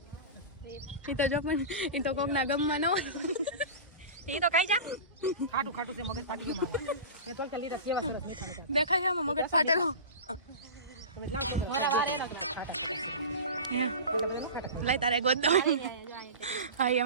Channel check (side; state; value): both; inverted; correlation -0.30